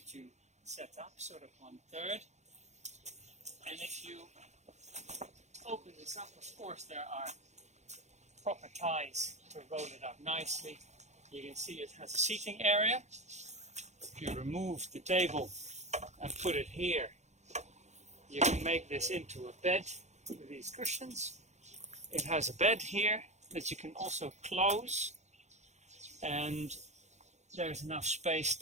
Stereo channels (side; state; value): left; late; 0.33 ms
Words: you set up, sort of 1/3. And if you open this up, of course there are proper ties to roll it up nicely. You can see it has a seating area. If you remove the table and put it here, you can make this into a bed with these cushions. It has a bed here that you can also close, and there's enough space